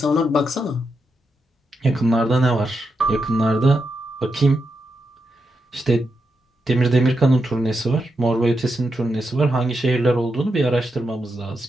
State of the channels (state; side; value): normal; both; correlation 0.85